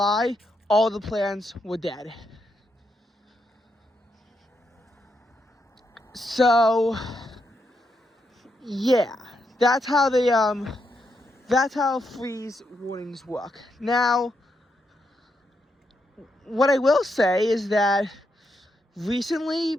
all the plants were dead. So yeah, that's how freeze warnings work. Now, what I will say is that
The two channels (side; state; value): both; normal; correlation 0.81